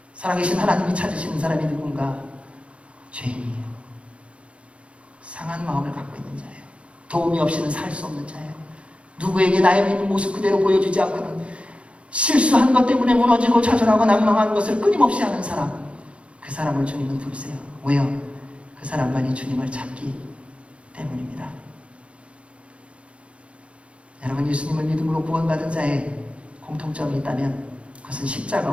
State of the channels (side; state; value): left; late; 0.060 ms